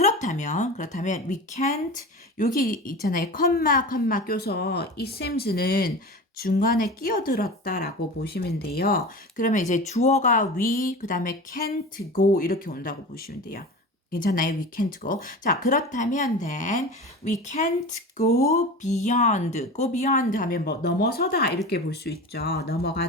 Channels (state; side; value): normal; both; correlation 0.31